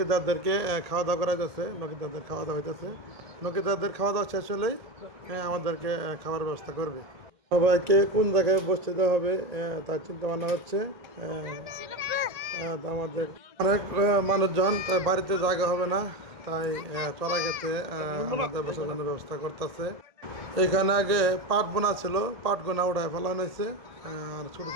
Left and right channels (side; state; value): left; late; 1.7 ms